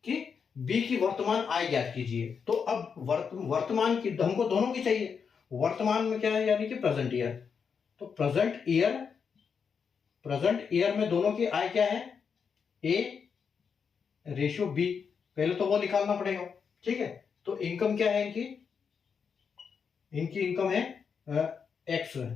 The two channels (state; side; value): quieter; right; 6.3 dB